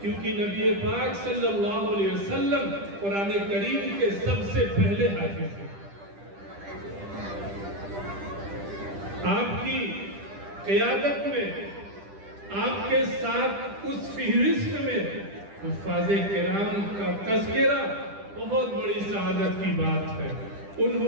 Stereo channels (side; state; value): left; late; 10 ms